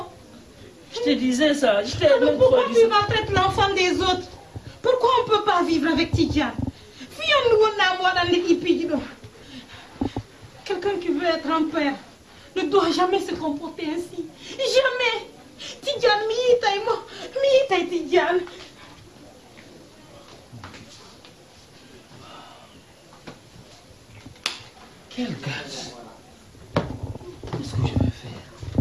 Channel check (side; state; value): both; identical; correlation 1.00